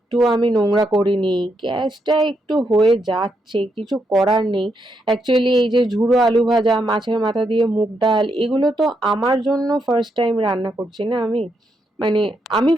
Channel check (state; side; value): normal; both; correlation 0.80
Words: আমি নোংরা করিনি, গ্যাসটা একটু হয়ে যাচ্ছে, কিছু করার নেই। অ্যাকচুয়ালি এই যে ঝুড়ো আলু ভাজা, মাছের মাথা দিয়ে মুগ ডাল, এগুলো তো আমার জন্য ফার্স্ট টাইম রান্না করছি না আমি, মানে আমি